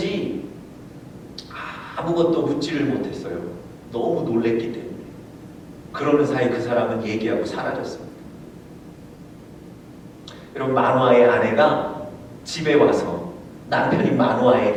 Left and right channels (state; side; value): identical; both; correlation 1.00